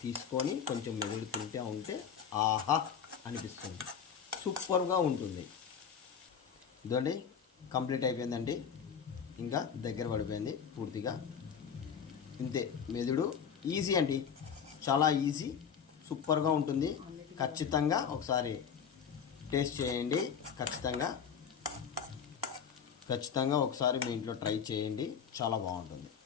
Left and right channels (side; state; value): right; quieter; 7.3 dB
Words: తీసుకొని కొంచెం మెదుడు తింటే ఉంటే ఆహా అనిపిస్తుంది. సూపర్గా ఉంటుంది. ఇదండి కంప్లీట్ అయిపోయిందండి. ఇంకా దగ్గర పడిపోయింది పూర్తిగా. ఇంతే. మెదుడు ఈజీ అండి, చాలా ఈజీ, సూపర్గా ఉంటుంది. ఖచ్చితంగా ఒకసారి టేస్ట్ చేయండి. ఖచ్చితంగా ఒకసారి మీ ఇంట్లో ట్రై చేయండి. చాలా బాగుంటుంది.